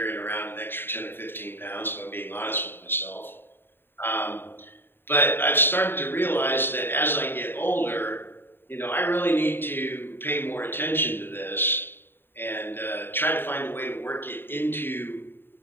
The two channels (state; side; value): late; right; 0.10 ms